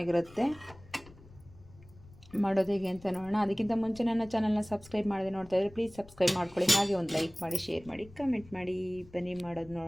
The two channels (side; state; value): left; noise; rumble, 22 dB below the sound